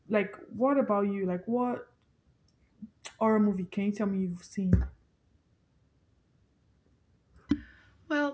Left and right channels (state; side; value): identical; both; correlation 1.00